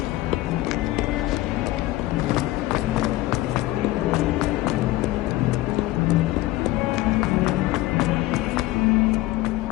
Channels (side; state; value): right; quieter; 17.3 dB